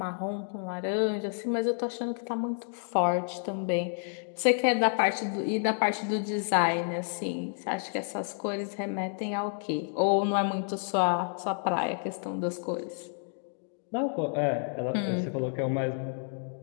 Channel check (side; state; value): right; silent; 58 dB below the other